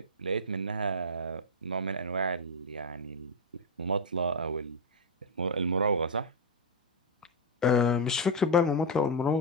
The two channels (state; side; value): normal; both; correlation 0.02